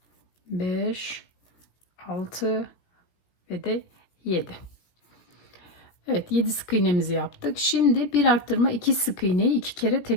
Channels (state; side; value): late; right; 17 ms